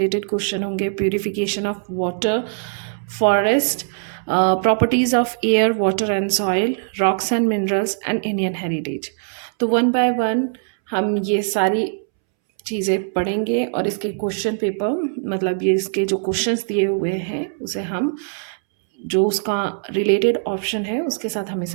क्वेश्चन होंगे, purification of water, forest, properties of air water and soil, rocks and minerals and Indian heritage. तो वन बाय वन हम ये सारी चीज़ें पढ़ेंगे और इसके क्वेश्चन पेपर मतलब ये इसके जो क्वेश्चंस दिए हुए हैं उसे हम जो उसका रिलेटेड ऑप्शन है उसके साथ हम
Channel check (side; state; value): left; silent; 65 dB below the other